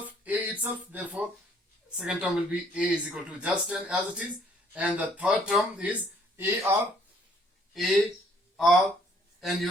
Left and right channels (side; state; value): both; normal; correlation 0.63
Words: therefore second term will be a is equal to just 10 as it is. And the third term is ar, and